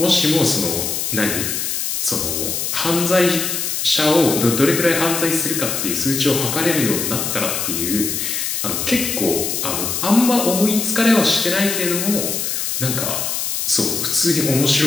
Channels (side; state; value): left; noise; hiss, 2 dB below the sound